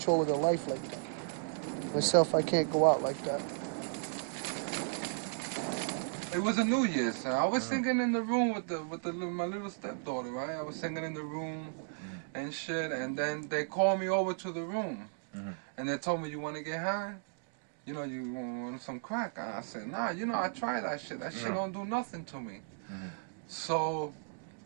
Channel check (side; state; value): left; silent; digital silence